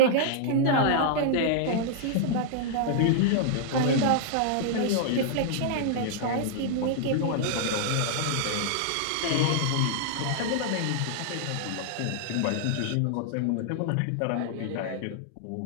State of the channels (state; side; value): different; both; correlation -0.01